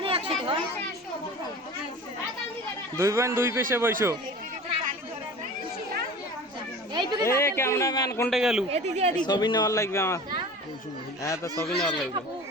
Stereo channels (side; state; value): both; normal; correlation 0.38